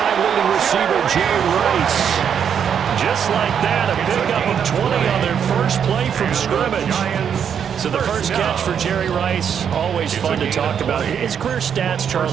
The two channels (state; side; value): quieter; left; 8.0 dB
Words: leading receiver, Jerry Rice. Just like that, a pickup of 20 on their first play from scrimmage. So the first catch for Jerry Rice, always fun to talk about. His career stats,